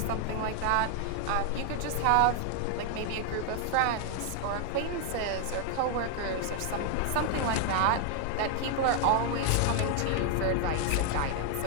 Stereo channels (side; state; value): both; different; correlation 0.00